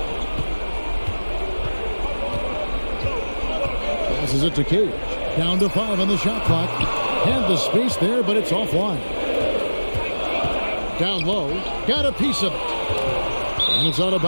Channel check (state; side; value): inverted; both; correlation -1.00